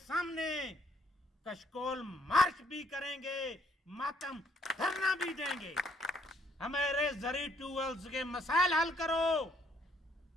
कशकोल मार्च भी करेंगे, मातम धरना भी देंगे। हमारे जरी ट्यूबवेल्स के मसाइल हल करो।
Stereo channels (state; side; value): normal; both; correlation 0.68